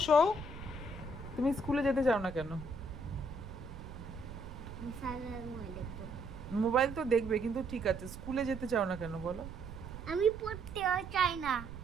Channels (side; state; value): right; noise; rumble, 12 dB below the sound